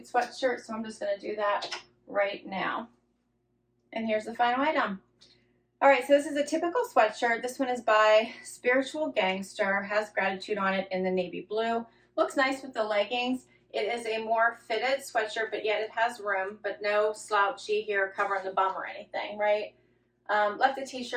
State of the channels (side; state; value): both; identical; correlation 1.00